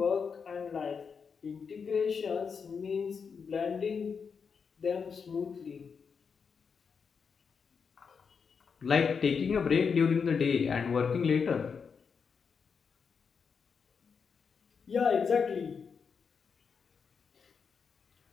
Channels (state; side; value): quieter; right; 6.0 dB